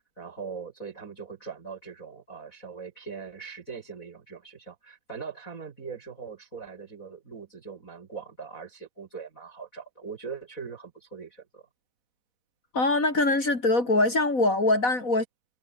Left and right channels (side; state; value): right; late; 4.1 ms